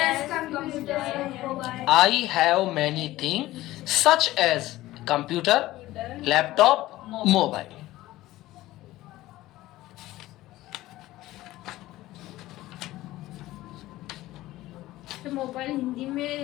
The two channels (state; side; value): quieter; right; 16.6 dB